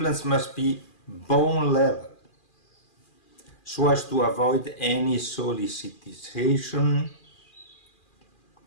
must be bone level, so as to avoid any solicitation,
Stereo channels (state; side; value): late; right; 2.4 ms